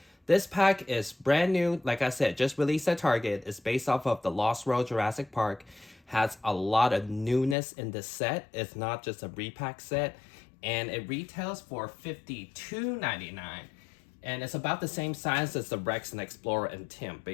This pack is brand new, like I said, just released at Target. It's based off of the Lost World Jurassic Park. Has a lot of newness in this set. It's not just a repack set. And it retails for $52.99. And it's about the same size as the Rex and Explorer and Tim,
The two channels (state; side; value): drops out; right; at 7.6 s